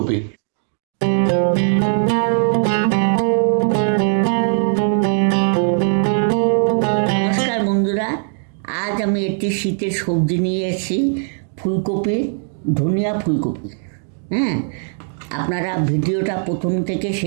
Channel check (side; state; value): left; silent; 64 dB below the other